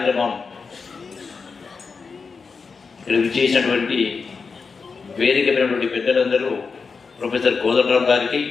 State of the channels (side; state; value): right; quieter; 5.0 dB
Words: చేసినటువంటి వేదికమైనటువంటి పెద్దలందరూ ప్రొఫెసర్ కోదండరావు గారికి,